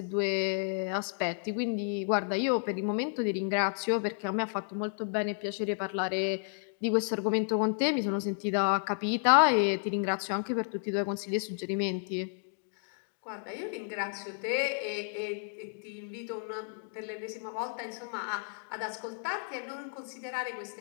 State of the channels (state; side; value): silent; right; digital silence